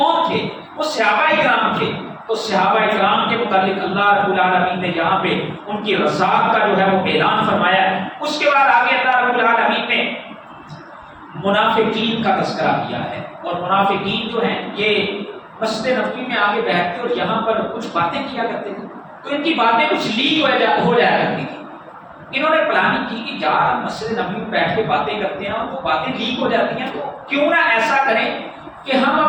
تھے؟ وہ صحابہ کرام تھے. تو صحابہ اکرام کے متعلق اللہ رب العالمین نے یہاں پہ ان کی رضاعت کا جو ہے وہ اعلان فرمایا ہے۔ اس کے بعد آگے اللہ رب العالمین نے منافقین کا تذکرہ کیا ہے، اور منافقین جو ہیں یہ مسجد نبوی میں آگے بیٹھتے اور یہاں پر کچھ باتیں کیا کرتے تھے، تو ان کی باتیں کچھ لیک ہو جایا کرتی تھی۔ انہوں نے پلاننگ کی کہ یار مسجد نبوی میں بیٹھ کے باتیں کرتے ہیں اور وہ باتیں لیک ہو جاتی ہیں، تو کیوں نہ ایسا کریں کہ ہم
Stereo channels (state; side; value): identical; both; correlation 1.00